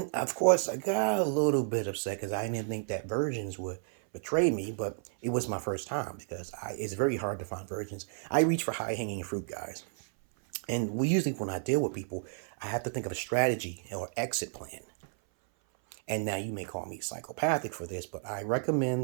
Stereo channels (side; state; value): left; silent; 57 dB below the other